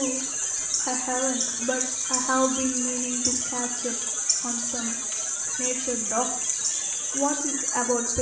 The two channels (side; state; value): both; identical; correlation 1.00